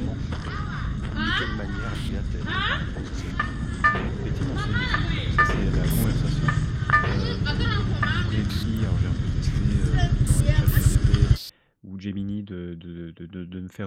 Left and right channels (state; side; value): identical; both; correlation 1.00